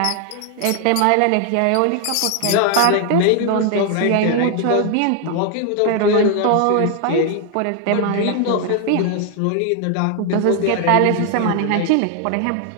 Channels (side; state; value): both; different; correlation 0.00